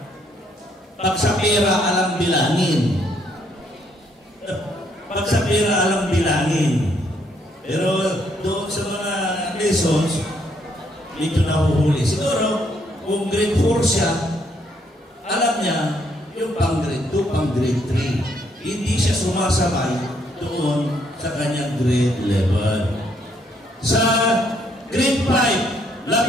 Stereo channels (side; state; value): both; normal; correlation 0.71